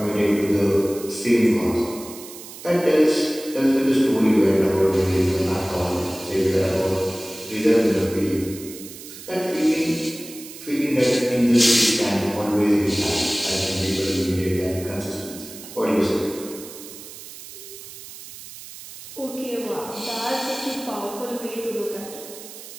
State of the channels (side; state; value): right; noise; hiss, 15 dB below the sound